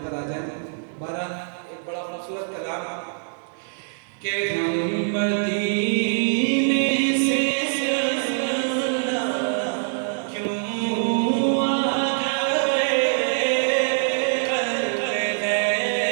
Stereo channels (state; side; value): silent; left; 63 dB below the other